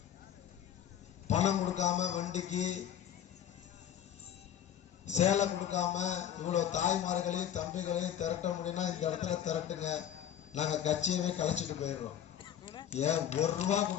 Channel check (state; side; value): quieter; right; 10.0 dB